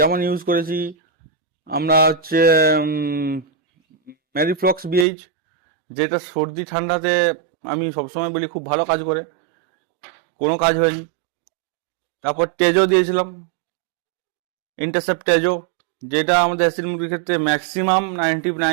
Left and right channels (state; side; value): drops out; left; at 5.1 s